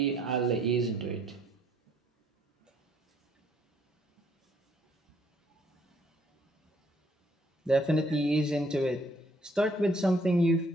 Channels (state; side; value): normal; both; correlation 0.66